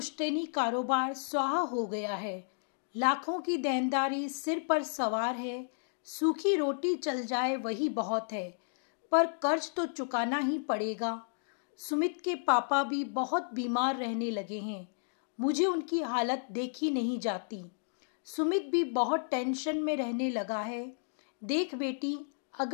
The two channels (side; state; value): right; silent; digital silence